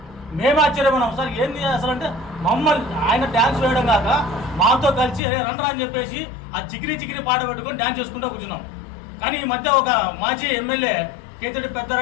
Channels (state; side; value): drops out; right; at 5.2 s